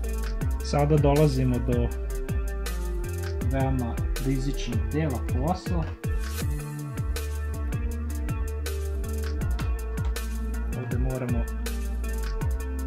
Sada dolazimo do veoma rizičnog dela posla. Ovdje moramo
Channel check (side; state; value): both; identical; correlation 1.00